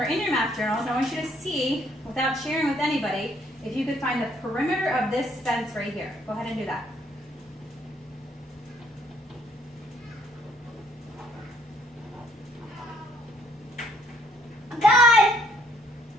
in your math journals, I want you to see, without sharing with anybody, if you could find the perimeter of this fence right here. Go ahead and do that.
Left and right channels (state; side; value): normal; both; correlation 0.66